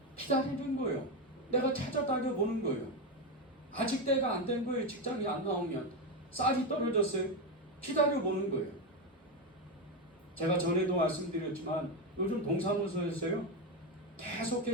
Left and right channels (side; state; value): both; normal; correlation 0.11